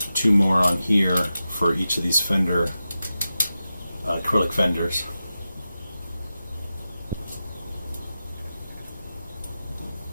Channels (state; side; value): inverted; both; correlation -0.92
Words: 2 more on here for each of these fender, acrylic fenders.